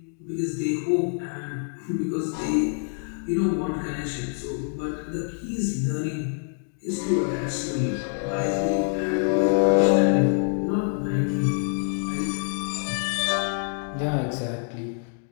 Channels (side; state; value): right; silent; 59 dB below the other